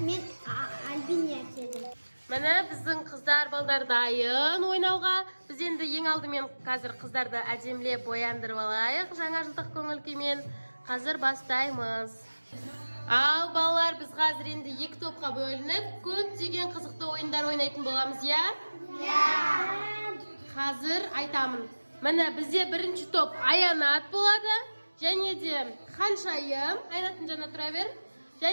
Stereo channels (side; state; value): both; inverted; correlation -1.00